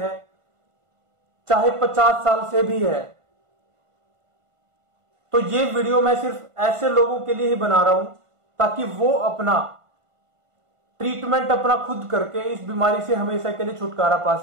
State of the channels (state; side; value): late; left; 1.5 ms